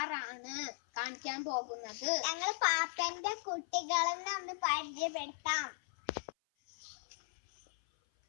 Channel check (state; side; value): silent; right; 53 dB below the other